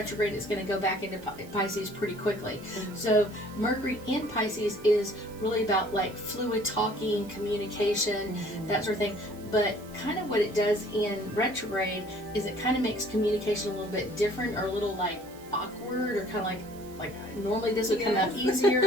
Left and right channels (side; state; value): right; noise; hiss, 22 dB below the sound